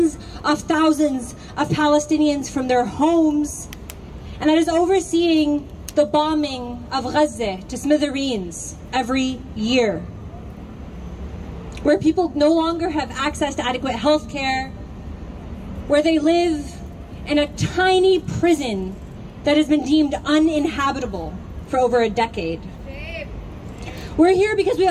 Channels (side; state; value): both; identical; correlation 1.00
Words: of thousands of Palestinians from their homes, and that is overseeing the bombing of Gaza to smithereens every year, where people no longer have access to adequate health care, where they live in a tiny prison that has been deemed uninhabitable for over a decade. We're here because we